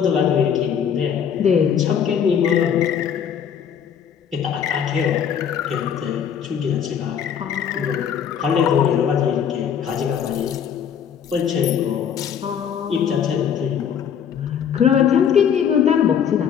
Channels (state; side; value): quieter; right; 8.1 dB